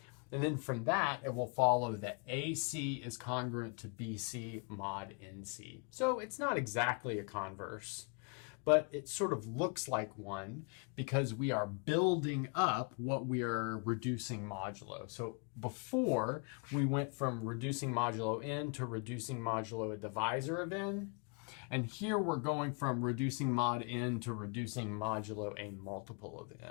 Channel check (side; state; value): right; quieter; 38.1 dB